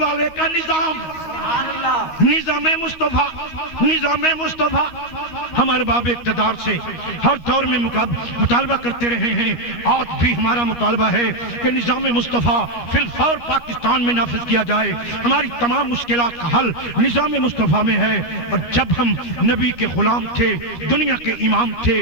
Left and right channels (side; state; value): right; late; 13 ms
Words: کا نظام، نظام مصطفیٰ، نظام مصطفیٰ۔ ہم ارباب اقتدار سے ہر دور میں مطالبہ کرتے رہے ہیں، آج بھی ہمارا مطالبہ ہے کہ نظام مصطفیٰ فی الفور پاکستان میں نافذ کیا جائے۔ ہماری تمام مشکلات کا حل نظام مصطفیٰ میں ہے۔ اور جب ہم نبی کے غلام تھے، دنیا کے امام تھے،